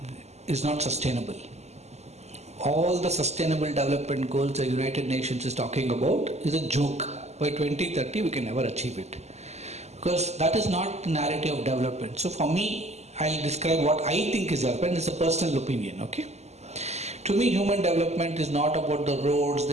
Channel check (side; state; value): left; late; 0.32 ms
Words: is not sustainable. All the sustainable development goals the United Nations is talking about is a joke. By 2030 we can never achieve it, because that is not the narrative of development. So for me, I'll describe what I think is development. It's a personal opinion, okay? To me, human development is not about the roads,